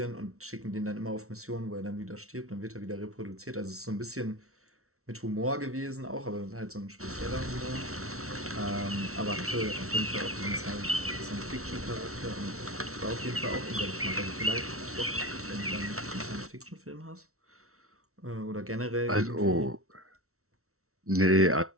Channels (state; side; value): late; left; 0.63 ms